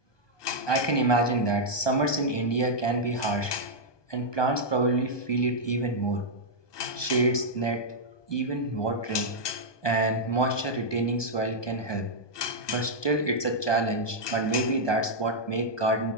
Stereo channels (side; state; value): right; late; 1.2 ms